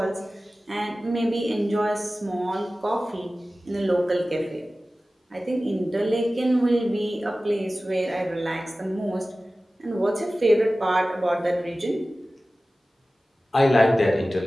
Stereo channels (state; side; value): normal; both; correlation 0.96